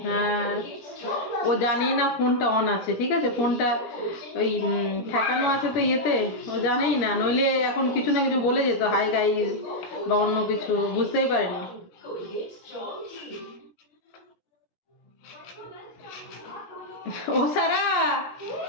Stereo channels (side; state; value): right; late; 17 ms